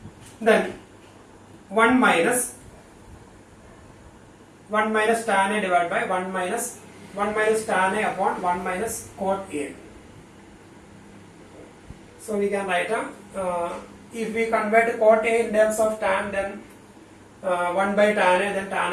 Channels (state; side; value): identical; both; correlation 1.00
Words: then 1 minus tan A divided by 1 minus tan A upon 1 minus cot A. So we can write if we convert cot A in terms of tan, then 1 by tan A, then tan